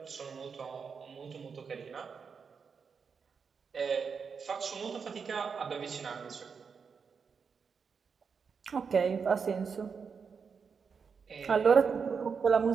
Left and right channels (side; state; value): left; quieter; 5.8 dB